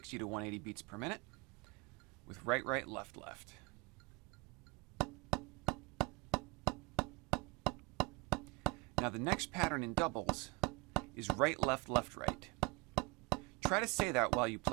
to 180 beats per minute, with right, right, left, left. Now the next pattern in doubles is right, left, left, right. Try to say that while you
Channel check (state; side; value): quieter; left; 26.3 dB